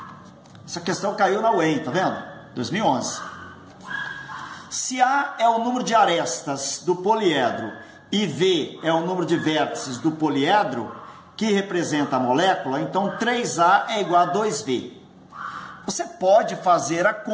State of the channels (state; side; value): identical; both; correlation 1.00